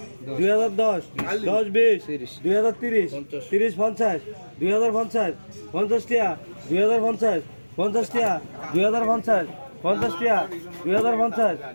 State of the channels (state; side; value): inverted; both; correlation -1.00